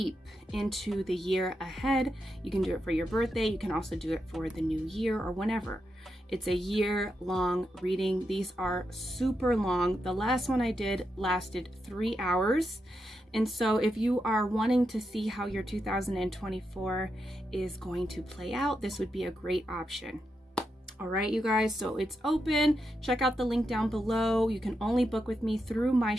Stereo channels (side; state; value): both; normal; correlation 0.85